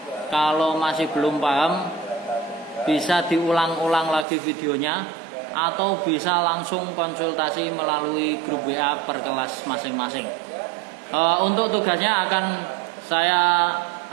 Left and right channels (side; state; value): left; drops out; at 4.2 s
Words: Kalau masih belum paham, bisa diulang-ulang lagi videonya, atau bisa langsung konsultasi melalui grup WA per kelas masing-masing. Untuk tugasnya akan saya